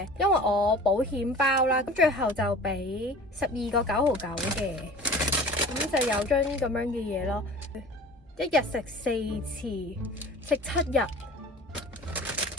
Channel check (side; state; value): both; normal; correlation 0.42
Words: 因為我保險包啦，咁最後就俾12個9毫9嘅。咁就有張咁樣嘅嘢咯，一日食4次，食7日。